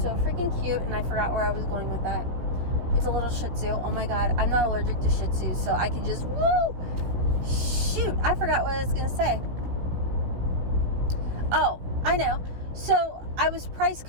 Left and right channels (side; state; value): left; late; 16 ms